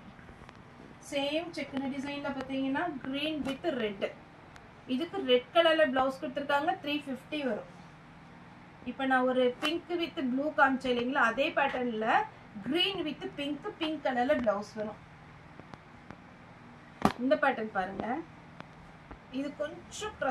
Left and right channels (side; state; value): both; identical; correlation 1.00